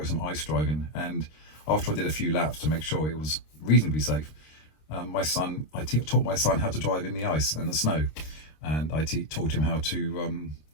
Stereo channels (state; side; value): late; right; 26 ms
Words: some ice driving. And after I did a few laps to make sure it was reasonably safe, I taught my son how to drive in the ice and the snow, and I taught him how to